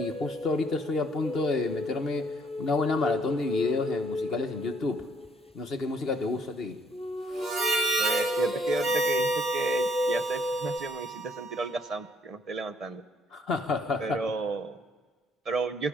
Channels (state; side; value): normal; both; correlation 0.66